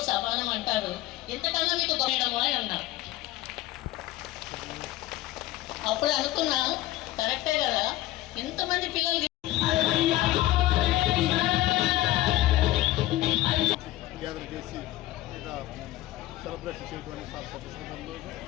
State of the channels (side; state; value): right; quieter; 16.1 dB